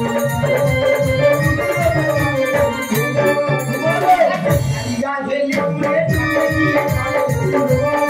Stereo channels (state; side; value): identical; both; correlation 1.00